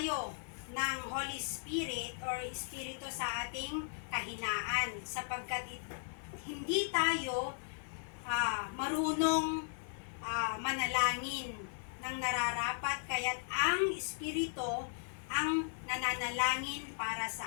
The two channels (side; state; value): right; silent; 53 dB below the other